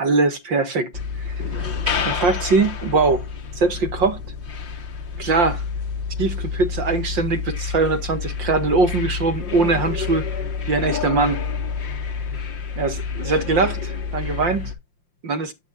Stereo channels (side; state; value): left; late; 5.7 ms